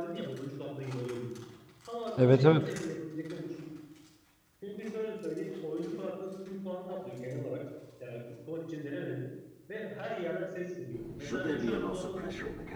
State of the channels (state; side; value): identical; both; correlation 1.00